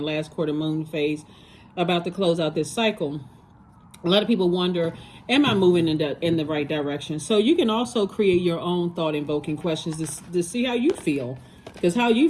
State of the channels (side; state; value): both; identical; correlation 1.00